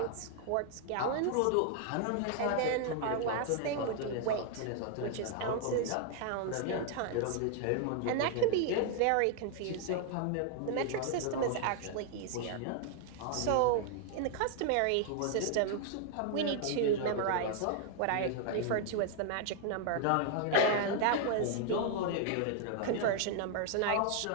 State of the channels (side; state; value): both; different; correlation 0.00